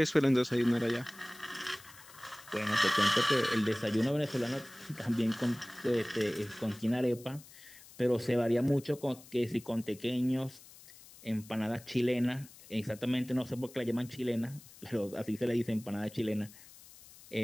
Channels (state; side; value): noise; left; hiss, 21 dB below the sound